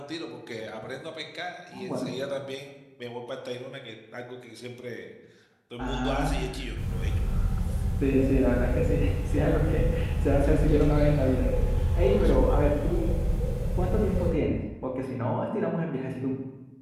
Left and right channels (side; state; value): both; identical; correlation 1.00